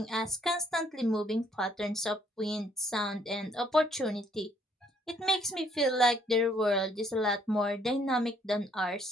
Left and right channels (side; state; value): both; normal; correlation 0.66